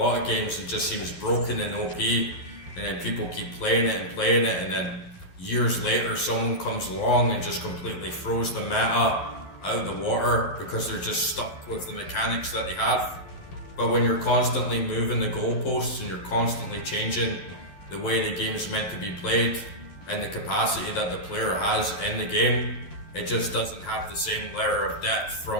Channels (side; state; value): right; late; 11 ms